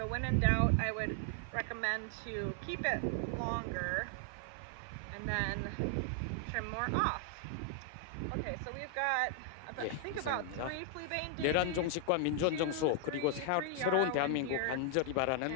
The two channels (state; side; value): different; both; correlation 0.00